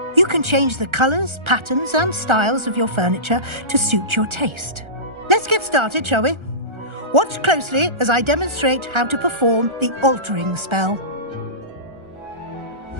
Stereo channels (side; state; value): left; late; 1.4 ms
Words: You can change the colors, patterns, and styles of your furniture to suit your taste. Let's get started, shall we? Watch closely as I demonstrate how to perform the altering spell.